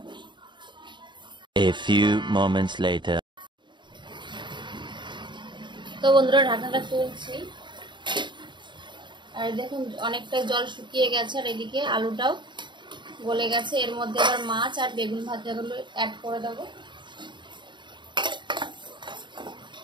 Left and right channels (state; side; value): late; left; 0.23 ms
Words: A few moments later. তো বন্ধুরা ঢাকনাটা তুলছি, আর দেখুন অনেকটা জল শুকিয়ে গেছে, আর এদিকে আলুটাও গলে গেছে। এর মধ্যে আবার মাছ আর বেগুন ভাজাগুলো অ্যাড করে দেবো।